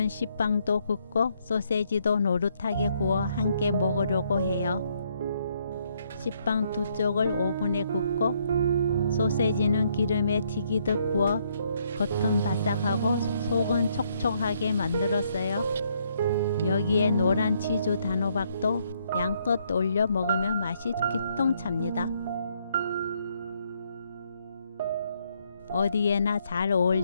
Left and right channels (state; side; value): inverted; both; correlation -0.71